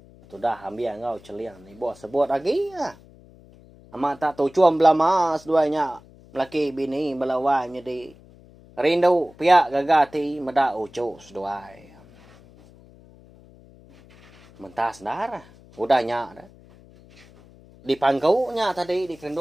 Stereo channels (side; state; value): left; noise; hum, 24 dB below the sound